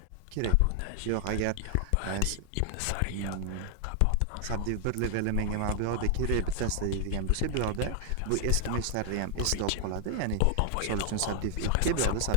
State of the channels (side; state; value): both; different; correlation 0.00